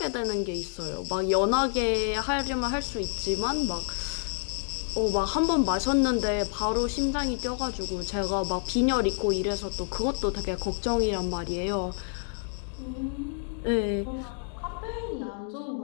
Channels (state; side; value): silent; right; 59 dB below the other